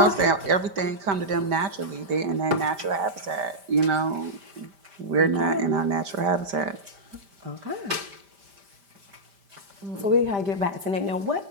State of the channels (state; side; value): late; left; 5.1 ms